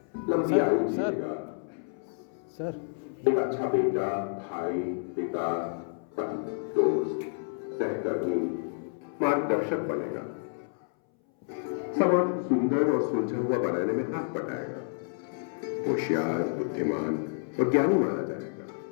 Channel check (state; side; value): silent; right; 58 dB below the other